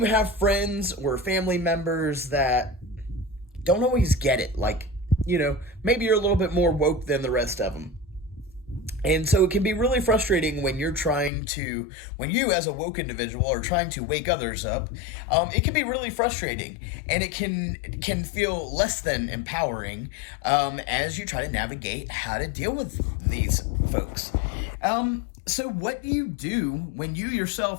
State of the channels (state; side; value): drops out; right; at 11.3 s